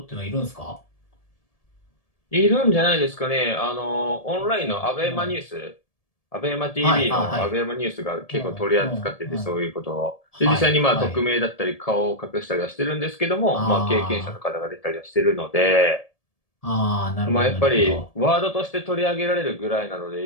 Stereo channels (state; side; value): late; right; 1.7 ms